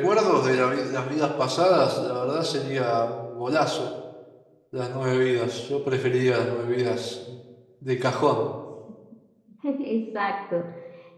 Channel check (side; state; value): both; identical; correlation 1.00